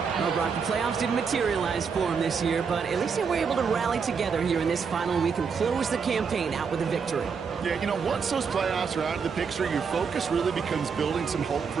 Well, Brock, the playoffs didn't materialize for him this year, but at least they were able to rally together here in this final week and close the campaign out with a victory. Yeah, you know, once those playoffs are out of the picture, your focus really becomes building some hope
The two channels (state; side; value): quieter; left; 5.9 dB